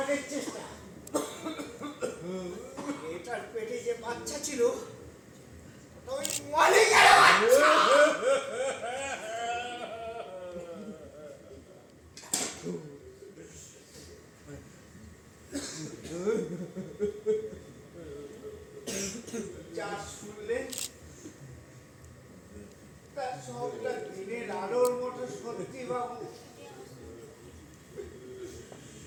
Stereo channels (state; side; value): identical; both; correlation 1.00